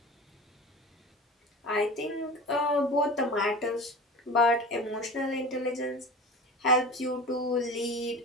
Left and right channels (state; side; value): normal; both; correlation 0.34